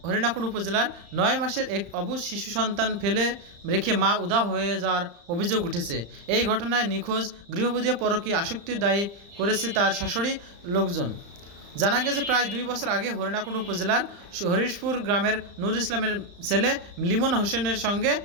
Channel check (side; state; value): left; late; 35 ms